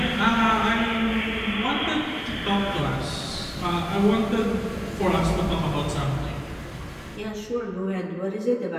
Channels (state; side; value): identical; both; correlation 1.00